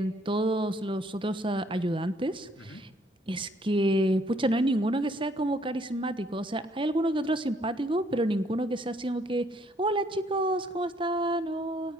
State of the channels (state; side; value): normal; both; correlation 0.66